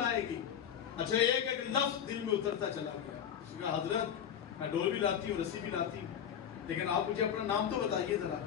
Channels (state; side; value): quieter; right; 8.9 dB